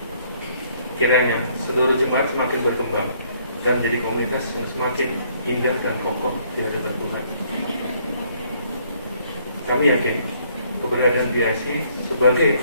Kiranya seluruh jemaat semakin berkembang dan menjadi komunitas yang semakin indah dan kokoh di hadapan Tuhan. Kami yakin keberadaan BIC sebagai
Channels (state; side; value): inverted; both; correlation -0.66